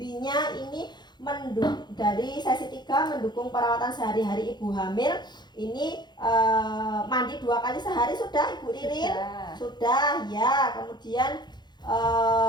ini dari sesi 3 mendukung perawatan sehari-hari ibu hamil. Ini mandi 2 kali sehari sudah Ibu Ririn? Sudah ya. Kemudian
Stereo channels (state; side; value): late; right; 0.21 ms